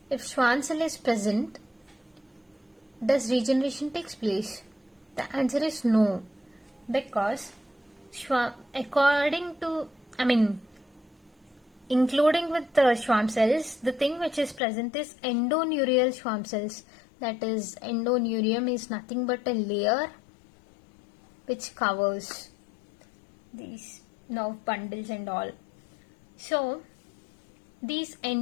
if Schwann cell is present, does regeneration takes place? The answer is no, because according to, including with the Schwann cells, the thing which is present is endoneurial Schwann cells. That is, endoneurium is nothing but a layer which covers these nerve bundles and all. So these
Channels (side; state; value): right; drops out; at 14.6 s